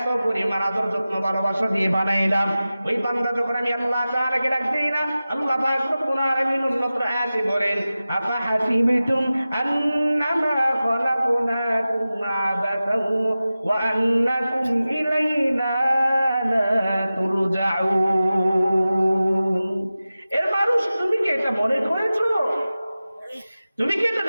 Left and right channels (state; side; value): inverted; both; correlation -0.95